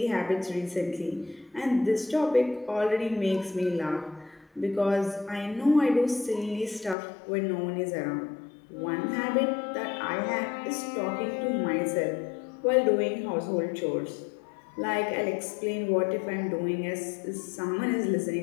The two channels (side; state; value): right; drops out; at 7.0 s